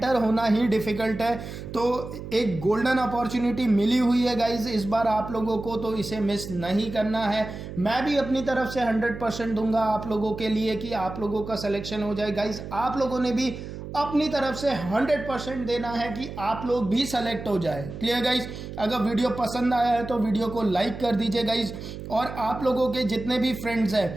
होना ही डिफिकल्ट है। तो एक गोल्डन अपॉर्चुनिटी मिली हुई है गाइज इस बार आप लोगों को, तो इसे मिस नहीं करना है। मैं भी अपनी तरफ से 100% दूंगा आप लोगों के लिए कि आप लोगों का सिलेक्शन हो जाए गाइज। आप लोगों ने भी अपनी तरफ से 100% देना है कि आप लोग भी सेलेक्ट हो जाए। Clear guys? अगर वीडियो पसंद आया है तो वीडियो को लाइक कर दीजिए गाइज, और आप लोगों के जितने भी फ्रेंड्स हैं,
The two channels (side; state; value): right; noise; hum, 10 dB below the sound